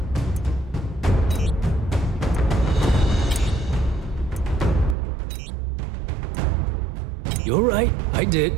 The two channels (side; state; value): left; drops out; at 5.0 s